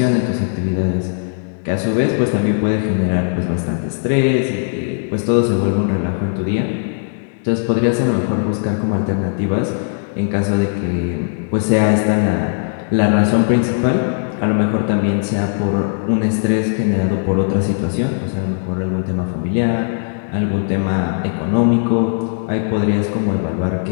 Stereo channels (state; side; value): silent; right; digital silence